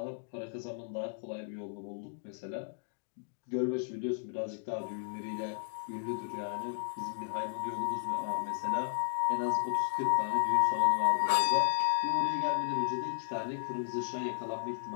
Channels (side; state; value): right; silent; digital silence